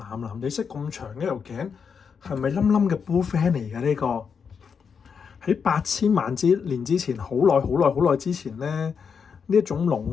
藍地色咁長嘅條頸，係咪冧冧嘅 bullfan 嚟嘅呢個？喺8000萬年之前，好耐好耐好耐之前咧，呢一種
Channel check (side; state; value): right; quieter; 6.3 dB